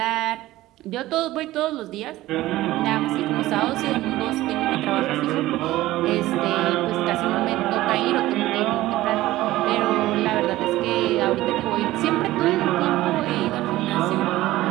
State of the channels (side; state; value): left; quieter; 16.6 dB